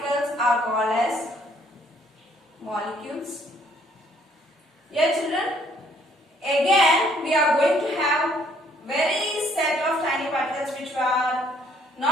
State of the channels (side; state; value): both; normal; correlation 0.64